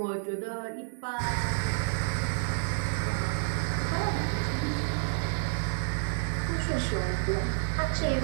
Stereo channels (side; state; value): left; silent; 58 dB below the other